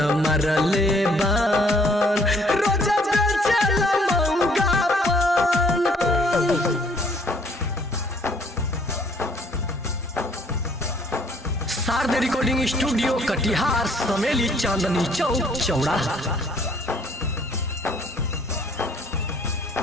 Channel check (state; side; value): normal; both; correlation 0.62